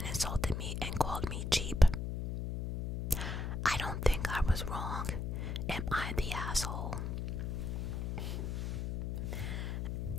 insulted me and called me cheap. I don't think I was wrong. Am I the asshole?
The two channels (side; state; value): left; noise; hum, 2 dB below the sound